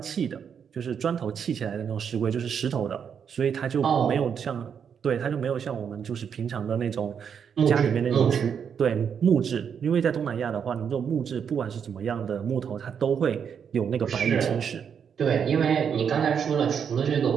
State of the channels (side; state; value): left; quieter; 7.4 dB